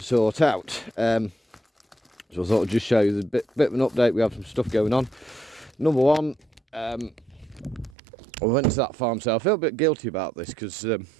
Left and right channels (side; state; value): left; drops out; at 8.0 s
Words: sort out. So I thought I'd just show you the bit of an update. We have some stuff going on. Number one, I went to that farm sale. I feel a bit guilty about this because I